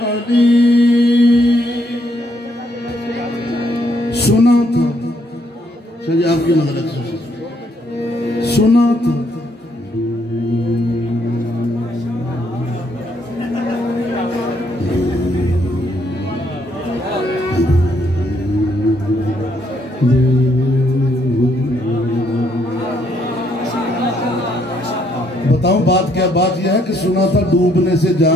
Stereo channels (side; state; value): both; normal; correlation 0.71